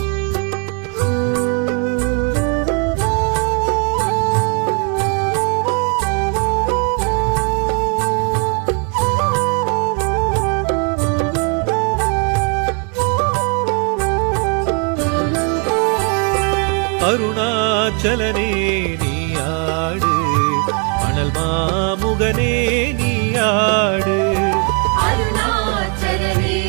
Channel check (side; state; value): left; quieter; 38.0 dB